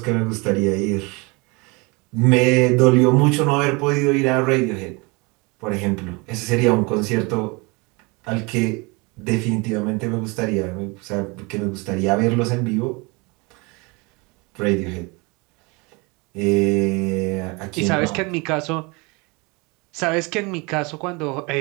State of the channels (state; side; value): quieter; left; 27.7 dB